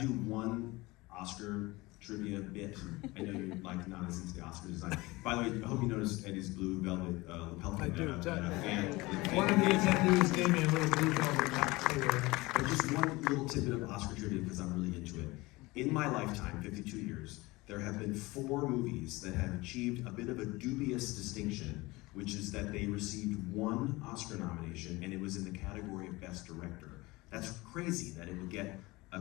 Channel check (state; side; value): quieter; right; 21.9 dB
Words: one Oscar trivia bit? I know you're like not as into the Oscar design. By the way, I hope you noticed Eddie's blue velvet lapel pin. I do. Fan. One of the attendees gave me a little blue velvet hat too. But just one little tidbit of Oscar trivia because I'm really into it. In my lifetime, 52 years, there have been 4 movies that have achieved a bit of a dubious distinction, which is that they received 1 Oscar nomination, and it was in the category of Best Director. That's crazy that it would get a